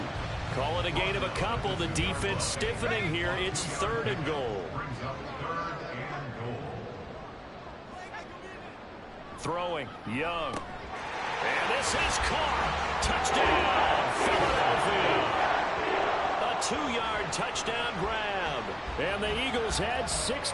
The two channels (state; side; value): identical; both; correlation 1.00